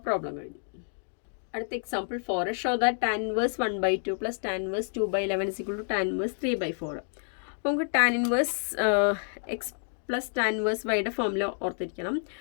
പ്രോബ്ലം കഴിഞ്ഞു. അടുത്ത example 4. Show that tan inverse 1/2 plus tan inverse 2/11 is equal to tan inverse 3/4. അപ്പോൾ നമുക്ക് tan inverse x plus tan inverse വൈയുടെ formula ഓർത്തിരിക്കണം.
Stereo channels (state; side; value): silent; right; 57 dB below the other